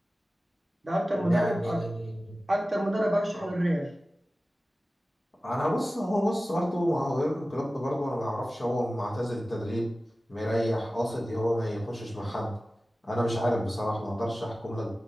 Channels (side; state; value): both; normal; correlation 0.96